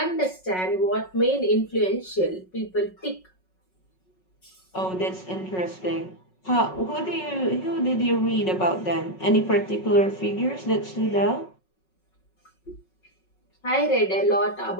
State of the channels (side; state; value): right; late; 5.4 ms